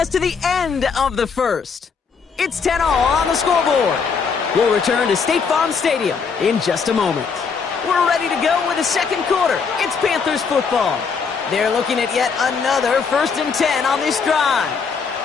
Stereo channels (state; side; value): quieter; right; 5.6 dB